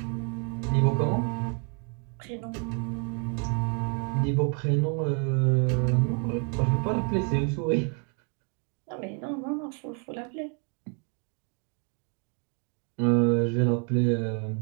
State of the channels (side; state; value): left; quieter; 38.4 dB